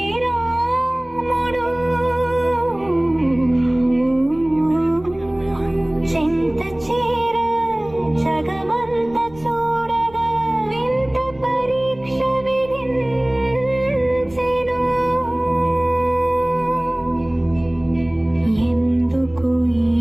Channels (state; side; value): noise; left; rumble, 23 dB below the sound